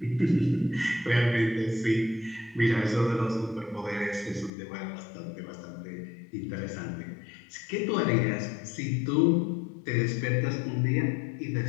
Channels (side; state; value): right; drops out; at 4.5 s